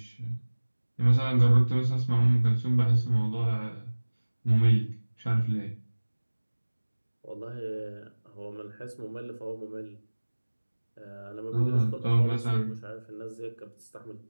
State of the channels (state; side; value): inverted; both; correlation -1.00